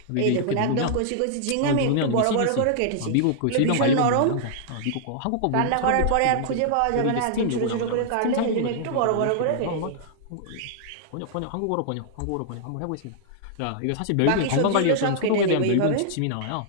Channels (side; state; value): both; different; correlation -0.01